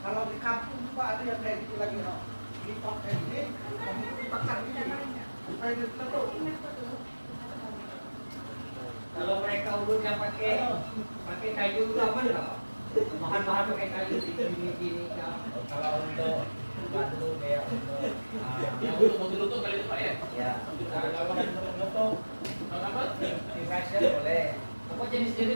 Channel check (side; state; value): both; inverted; correlation -1.00